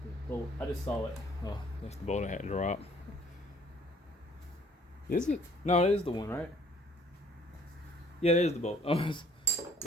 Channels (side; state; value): both; normal; correlation 0.59